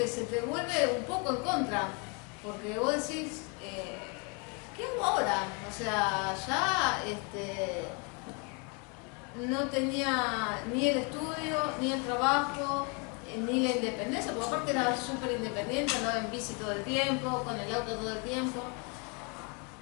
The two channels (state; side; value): quieter; right; 34.0 dB